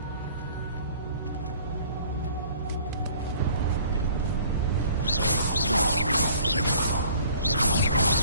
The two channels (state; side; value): inverted; both; correlation -0.53